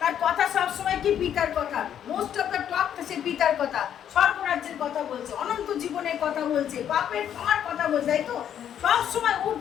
তার কথা সবসময় কি পিতার কথা, মোস্ট অফ দ্য টক সে পিতার কথা, স্বর্গরাজ্যের কথা বলছে, অনন্ত জীবনের কথা বলছে, পাপের ক্ষমার কথা বলছে, তাই তো সবসময়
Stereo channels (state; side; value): quieter; right; 9.6 dB